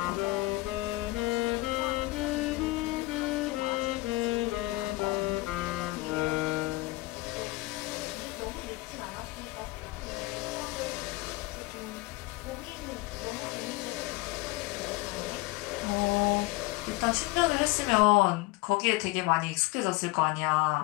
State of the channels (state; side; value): quieter; right; 21.3 dB